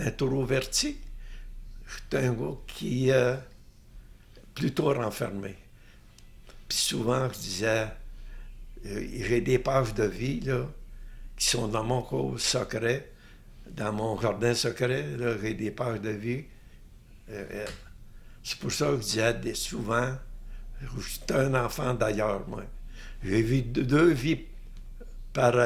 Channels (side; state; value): both; identical; correlation 1.00